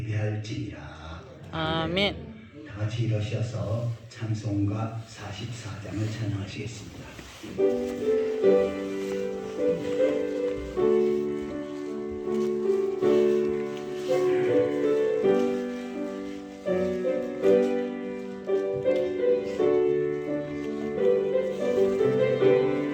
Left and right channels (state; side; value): identical; both; correlation 1.00